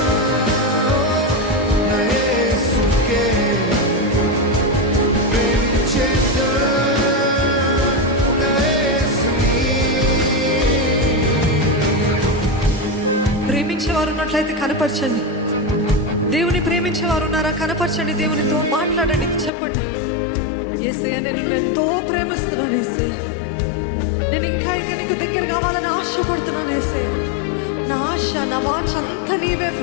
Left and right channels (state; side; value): drops out; right; at 19.5 s